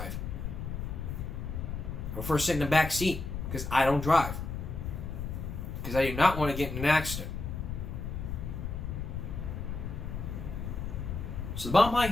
I prefer sitting in the back seat. Because I don't drive. Because I do not want to get in an accident. So the bottom line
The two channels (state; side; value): noise; left; rumble, 5 dB below the sound